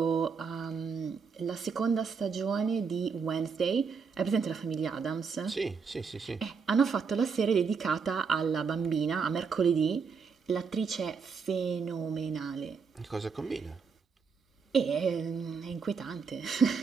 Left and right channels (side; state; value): left; quieter; 5.6 dB